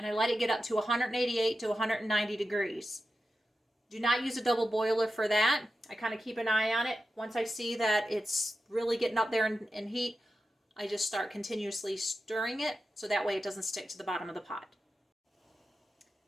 I let it get up to 188 to 190 degrees. Do not use a double boiler for that. I kind of keep an eye on it. Once I see that it's really getting up there in heat, I just start continuously stirring it, so that way it doesn't stick to the bottom of the pot.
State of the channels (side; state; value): both; normal; correlation 0.91